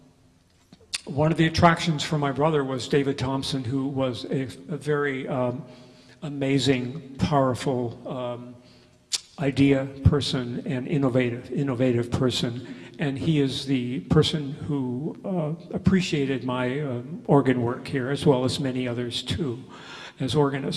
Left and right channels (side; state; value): both; identical; correlation 1.00